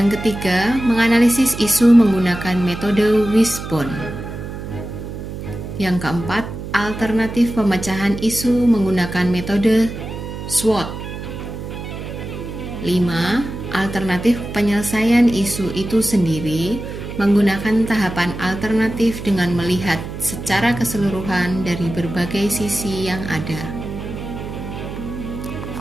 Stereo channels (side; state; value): right; noise; hum, 8 dB below the sound